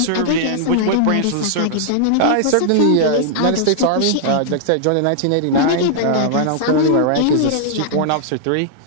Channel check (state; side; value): different; both; correlation -0.01